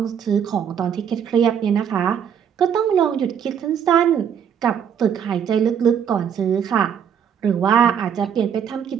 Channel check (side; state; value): left; quieter; 8.1 dB